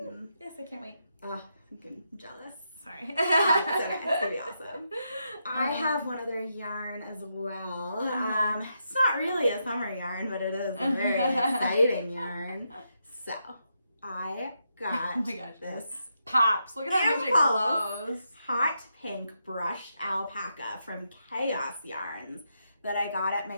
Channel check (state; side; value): inverted; both; correlation -0.82